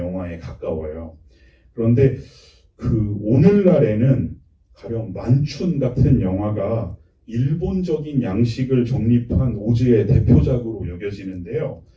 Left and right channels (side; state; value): both; identical; correlation 1.00